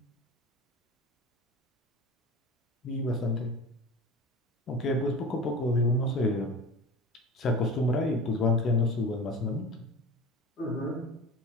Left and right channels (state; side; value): normal; both; correlation 0.34